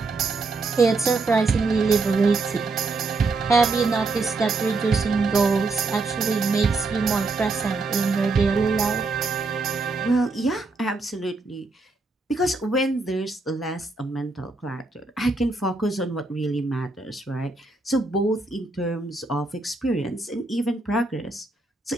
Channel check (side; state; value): left; quieter; 3.6 dB